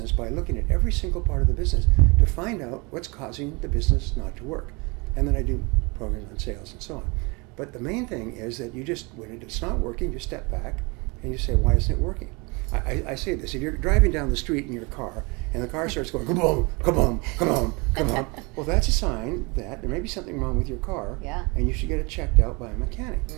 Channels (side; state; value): left; quieter; 28.3 dB